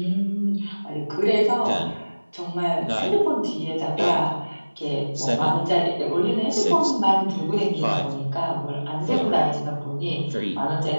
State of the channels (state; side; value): inverted; both; correlation -1.00